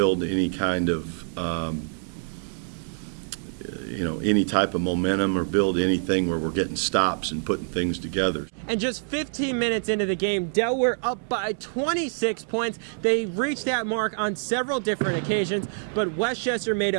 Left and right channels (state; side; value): silent; left; digital silence